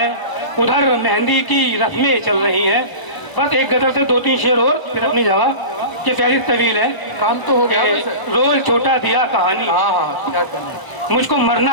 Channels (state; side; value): late; right; 1.0 ms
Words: उधर मेहंदी की रस्में चल रही हैं। बस एक गजल से 2-3 शेर और फिर अपनी जगह, ये फहरिस्त तवील है। काम तो हो गया कि वैसे। रोल छोटा दिया कहानी, क्या कहने? मुझको